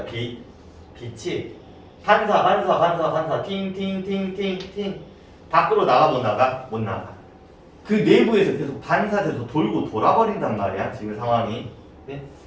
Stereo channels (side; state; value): both; identical; correlation 1.00